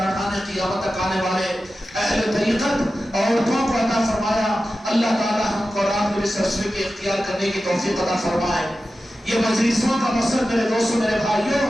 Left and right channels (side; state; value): both; normal; correlation 0.93